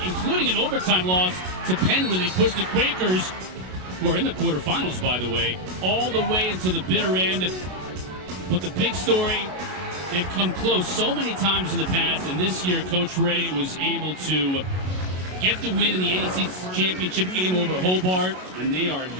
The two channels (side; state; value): left; late; 33 ms